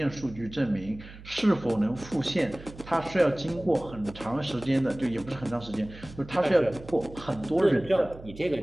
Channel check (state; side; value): noise; right; hum, 17 dB below the sound